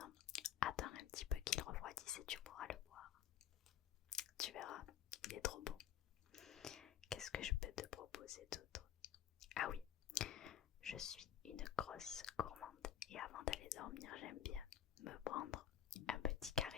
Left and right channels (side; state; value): right; quieter; 10.0 dB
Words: Attends un petit peu qu'il refroidisse et tu pourras le boire. Tu verras, il est trop bon. Qu'est-ce que je peux te proposer d'autre? Ah oui, je suis une grosse gourmande et avant d'aller dormir, j'aime bien me prendre un petit